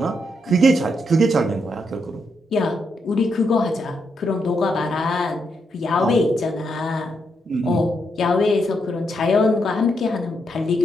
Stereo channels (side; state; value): both; normal; correlation 0.80